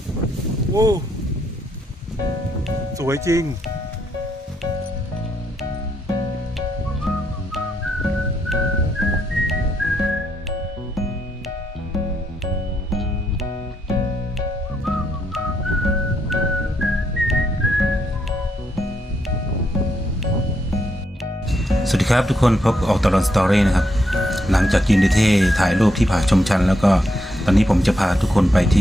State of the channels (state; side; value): normal; both; correlation 0.78